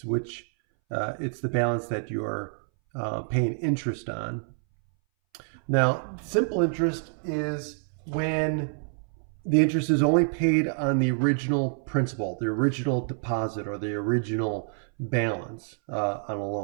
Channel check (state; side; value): silent; left; 60 dB below the other